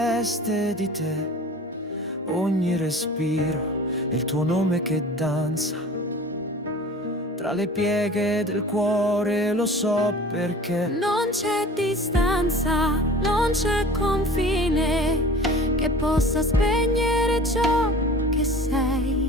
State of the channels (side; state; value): both; normal; correlation 0.42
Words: di te, ogni respiro è il tuo nome che danza tra le pieghe del cuore, lo so perché non c'è distanza, non c'è confine che possa spegnere ciò che sei.